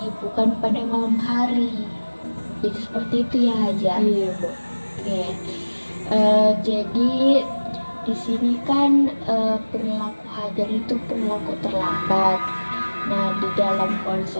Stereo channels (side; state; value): both; inverted; correlation -1.00